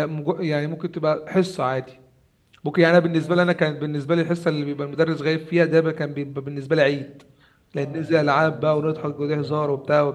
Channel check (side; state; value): both; identical; correlation 1.00